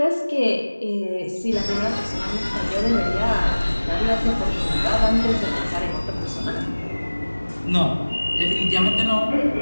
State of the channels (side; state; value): both; inverted; correlation -1.00